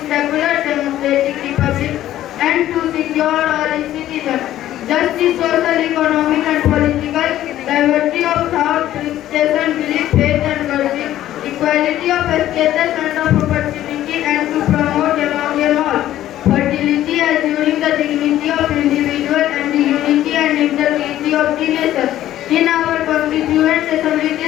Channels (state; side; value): quieter; right; 13.1 dB